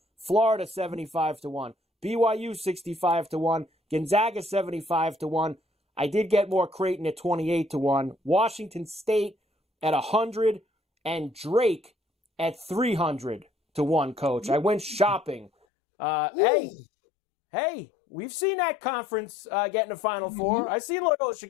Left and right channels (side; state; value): right; drops out; at 15.5 s